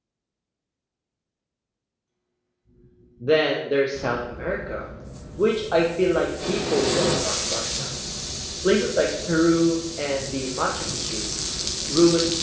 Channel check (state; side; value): identical; both; correlation 1.00